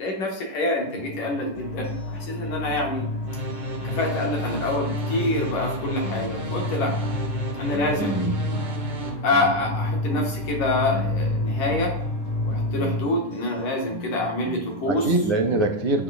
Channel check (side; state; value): right; late; 11 ms